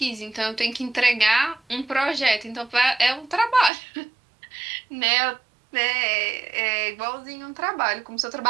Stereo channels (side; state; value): left; drops out; at 3.7 s